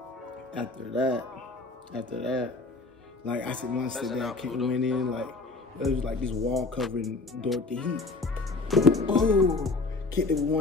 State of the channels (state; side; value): quieter; right; 3.5 dB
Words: after that, like I said, my stepdad went in, like it was like this wall covering Dorothy Heat. Oh, kicked it with